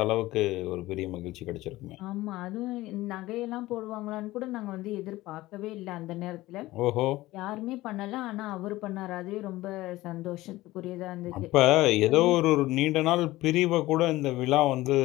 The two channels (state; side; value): quieter; right; 17.8 dB